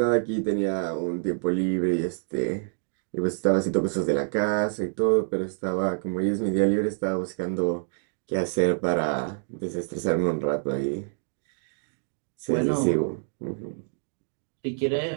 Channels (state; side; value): silent; left; digital silence